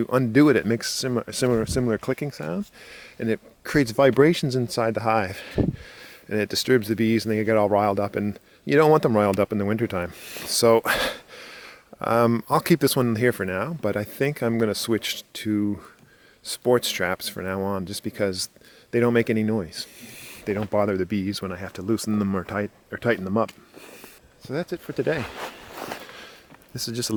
undo it, it makes similar clicking sounds, and it creates vibrations inside the hive, and it disturbs the bees, and they get all riled up, and you don't want them riled up in the wintertime. So I'll keep this one here for now, but I think I'm going to switch to sports straps for now on, just because they don't make any noise. They don't bother the bees when I have to loosen them or tighten them up. So that's it for today. This is just a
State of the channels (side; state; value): both; identical; correlation 1.00